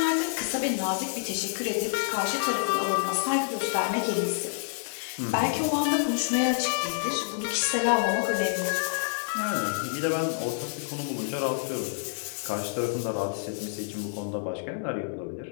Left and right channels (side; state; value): right; silent; digital silence